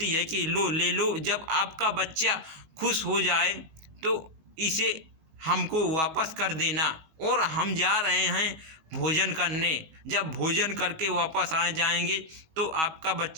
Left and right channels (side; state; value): left; late; 19 ms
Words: है कि लो ले लो, जब आपका बच्चा खुश हो जाए तो इसे हमको वापस कर देना और हम जा रहे हैं भोजन करने। जब भोजन करके वापस आ जाएंगे तो आपका